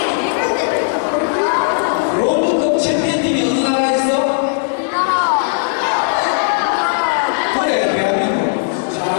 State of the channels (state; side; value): silent; right; digital silence